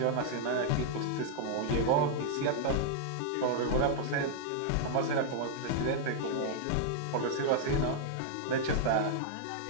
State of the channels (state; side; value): different; both; correlation -0.01